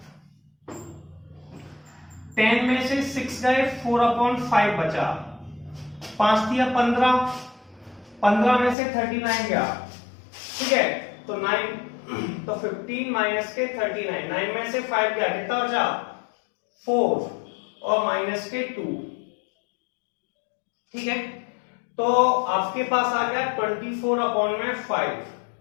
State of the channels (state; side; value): drops out; right; at 8.8 s